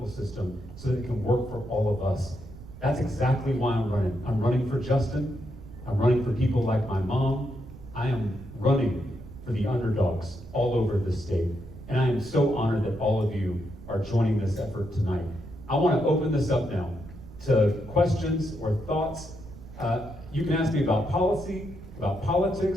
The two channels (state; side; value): noise; right; rumble, 16 dB below the sound